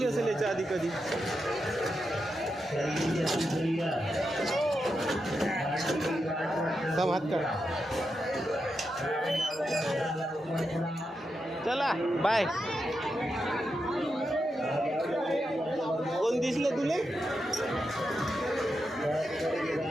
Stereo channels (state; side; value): normal; both; correlation 0.86